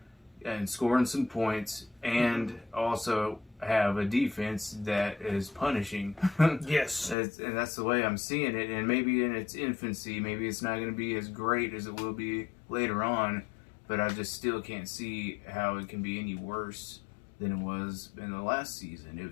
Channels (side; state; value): right; drops out; at 7.2 s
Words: and scoring some points, and also have a defense that is punishing. Yes. And that's the way I'm seeing it. And maybe in its infancy, maybe it's not going to be as great as it will be later on, but I just still can't see how it can be any worse than it was in the last season.